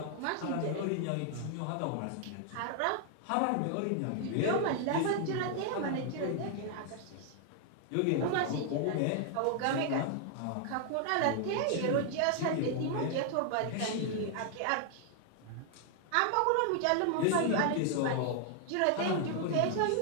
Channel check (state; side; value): different; both; correlation 0.00